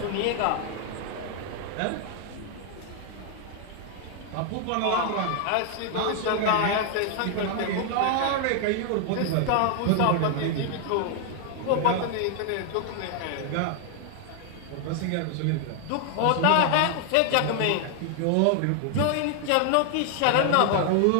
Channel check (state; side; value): different; both; correlation 0.00